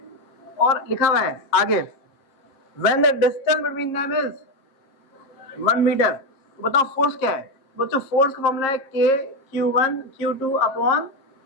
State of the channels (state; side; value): late; right; 7.5 ms